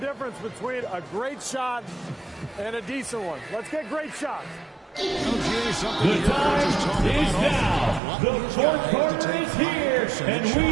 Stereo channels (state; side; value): drops out; left; at 8.0 s